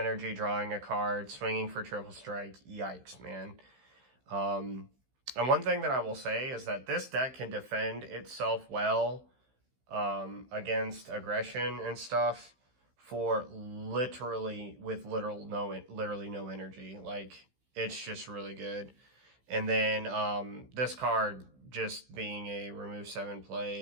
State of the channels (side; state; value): left; late; 15 ms